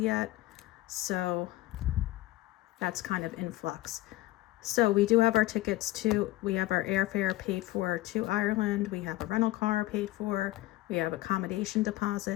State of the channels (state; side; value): quieter; right; 17.3 dB